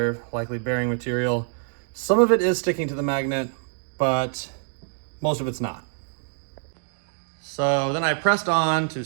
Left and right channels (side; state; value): left; silent; digital silence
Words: likely bearing material. Some of it is sticking to the magnet, but most of it's not. So then I pressed on to